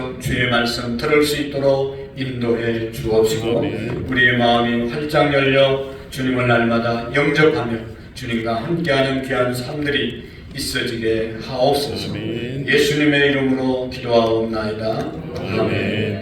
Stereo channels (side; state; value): both; identical; correlation 1.00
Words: 주의 말씀 들을 수 있도록 인도해 주옵시고 아멘. 우리의 마음이 활짝 열려 주님을 날마다 영접하며 주님과 함께하는 귀한 삶들이 있어지게 하옵소서. 아멘. 예수님의 이름으로 기도하옵나이다.